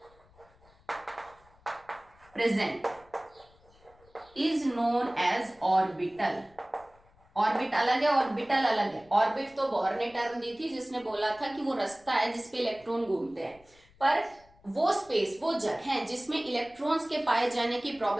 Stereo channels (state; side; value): noise; left; rumble, 29 dB below the sound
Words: present is known as orbital. Orbit अलग है, ऑर्बिटल अलग है। ऑर्बिट तो बोहर ने टर्म दी थी जिसने बोला था कि वो रास्ता है जिसपे इलेक्ट्रॉन घूमते हैं, पर वो स्पेस, वो जगह जिसमें इलेक्ट्रॉन्स के पाए जाने की